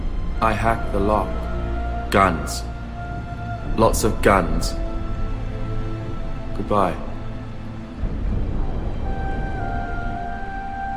I hacked the lock. Guns. Lots of guns. Goodbye.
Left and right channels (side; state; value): both; identical; correlation 1.00